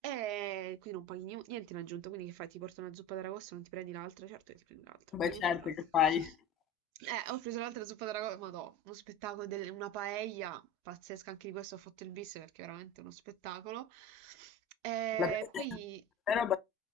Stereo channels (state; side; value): normal; both; correlation 0.33